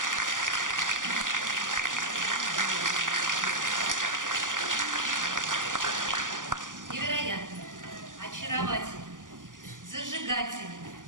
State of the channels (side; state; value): left; late; 0.88 ms